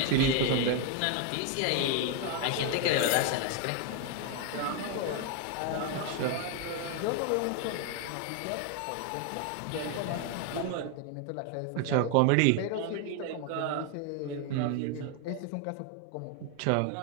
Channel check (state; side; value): different; both; correlation 0.01